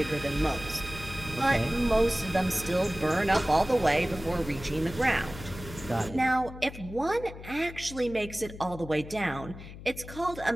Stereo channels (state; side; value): noise; left; hum, 14 dB below the sound